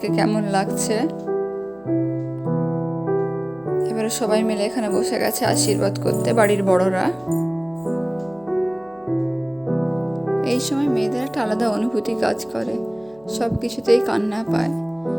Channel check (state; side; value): noise; left; hum, 30 dB below the sound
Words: কেমন লাগছে। এবারে সবাই মিলে এখানে বসে গেছে আশীর্বাদ করতে, বাড়ির বড়রা। এই সময় মেয়েদের একটা আলাদা অনুভূতি কাজ করে, সব কিছুতেই কান্না পায়।